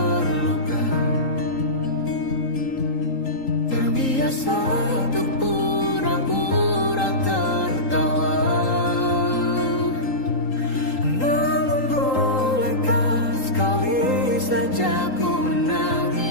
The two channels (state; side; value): late; right; 3.8 ms